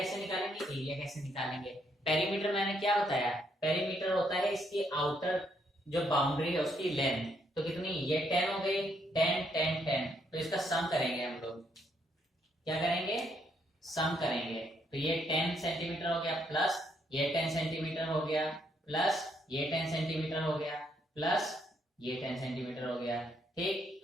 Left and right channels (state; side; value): normal; both; correlation 0.73